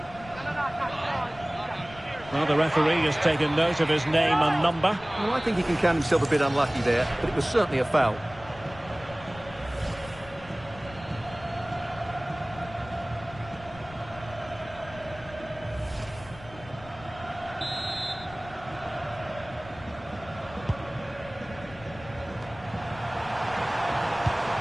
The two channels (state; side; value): noise; left; rumble, 18 dB below the sound